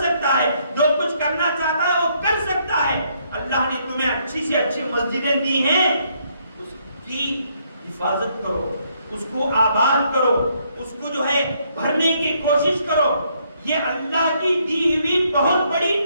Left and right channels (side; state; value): both; inverted; correlation -0.71